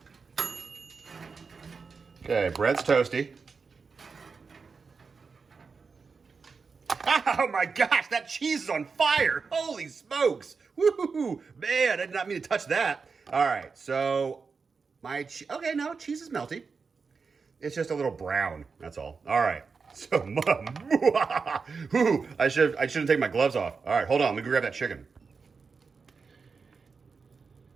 Okay, bread's toasty. Oh my gosh, that cheese is on fire. Holy smokes. Woo-hoo-hoo. Man, I did not mean to touch that. All right, so okay, no, cheese is melty. It's just a little brown, that's all. All right, so, I shouldn't take my gloves off. All right, hold on, let me go grab that chicken.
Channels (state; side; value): quieter; left; 5.0 dB